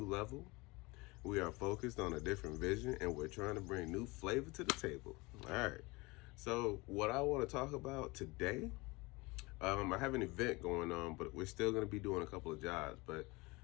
level. We are focused on a different vision, and we're trying to bring new flavor to the table. All right. So what I want to talk about today, I have an event going on, but we're still going to be doing a couple of jobs. But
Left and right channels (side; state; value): right; quieter; 24.0 dB